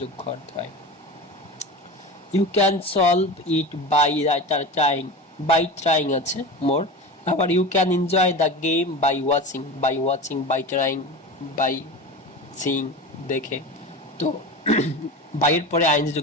করতে হয়। You can solve it by trying, by trying আছে মোর, আবার you can enjoy the game by watching, by trying, by sing, দেখে। তো বাইয়ের পরে আইএনজি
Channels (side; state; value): both; normal; correlation 0.29